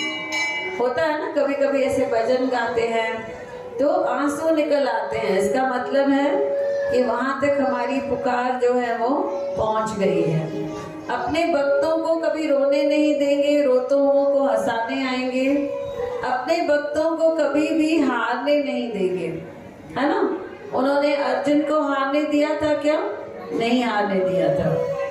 होता है ना, कभी कभी ऐसे भजन गाते हैं तो आंसू निकल आते हैं, इसका मतलब है कि वहां तक हमारी पुकार जो है वो पहुंच गई है। अपने भक्तों को कभी रोने नहीं देंगे, रोतों को हंसाने आएंगे। अपने भक्तों को कभी भी हारने नहीं देंगे, है ना? उन्होंने अर्जुन को हारने दिया था क्या? नहीं हारने दिया था।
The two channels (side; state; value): both; identical; correlation 1.00